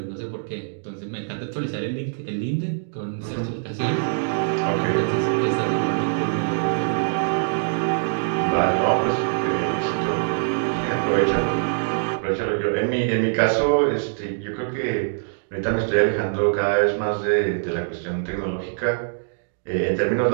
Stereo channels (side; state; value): left; silent; digital silence